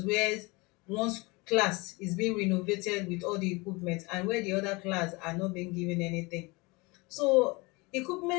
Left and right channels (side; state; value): right; quieter; 25.5 dB